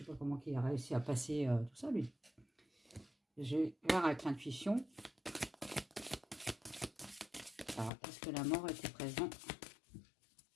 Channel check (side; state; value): right; drops out; at 7.9 s